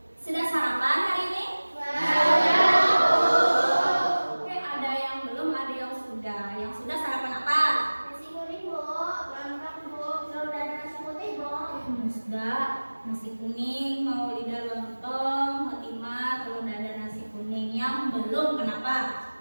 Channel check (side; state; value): both; inverted; correlation -1.00